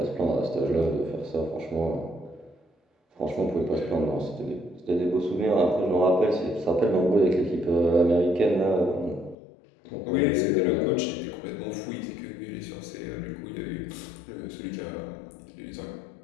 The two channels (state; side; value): drops out; right; at 9.3 s